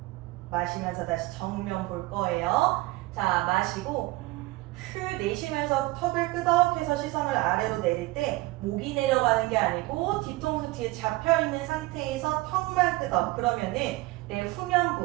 마시면서 다시 정면 볼 거예요. 자, 마시고 후 내쉬면서 턱을 끄덕해서 시선을 아래로 내릴 때 목이 내려가는 게 아니고 뒤통수 뒤에 잡혀있는 상태에서 턱만 끄덕. 그러면은 내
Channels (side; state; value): left; quieter; 20.4 dB